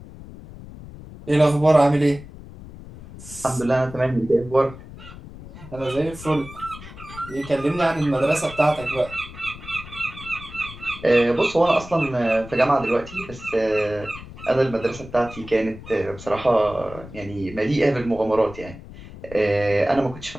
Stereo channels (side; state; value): left; noise; rumble, 16 dB below the sound